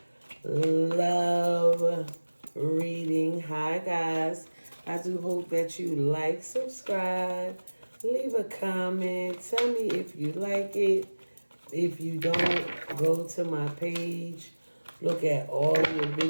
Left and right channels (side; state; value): both; inverted; correlation -1.00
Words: love reading. Hi, guys. I do hope that you like, subscribe, leave a comment, tell me if you like it. If you don't, go to my page, look at all your